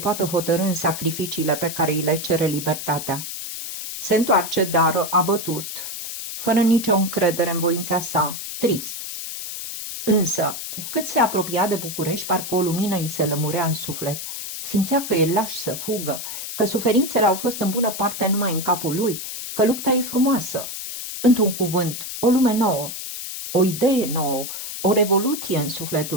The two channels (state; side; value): noise; left; hiss, 7 dB below the sound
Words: hotărî în sacrificiile pe care îi le cere libertatea. Se întoarce, dar abătut, fără nicio încredere în voința sa, trist. Însă, cu cât se apropia de București, parcă o lumină îi se lămurea în suflet. Simțea că e laș să fugă, că suferințele au fost în bună parte numai în capul lui, că lupta e frumoasă. Într-un cuvânt, o lume nouă, o idee nouă, o revoluție în